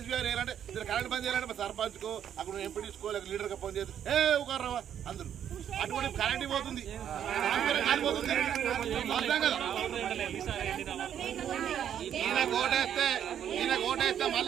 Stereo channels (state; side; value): quieter; left; 9.5 dB